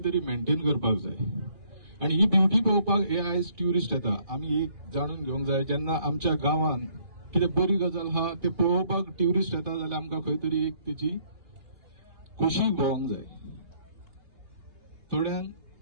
तरी मेंटेन करपाक जाय. आनी ही ब्युटी पळोवपाक हे आयज ट्युरिस्ट येता. आमी एक जाणून घेवंक जाय, जेन्ना आमच्या गांवांत कितें बरी गजाल आहा ते पळोवपाक ट्युरिस्ट येता जाल्यार आमकां खंय तरी एक तेची खोशी भोवंक जाय. थोड्यांक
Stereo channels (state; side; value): late; left; 2.8 ms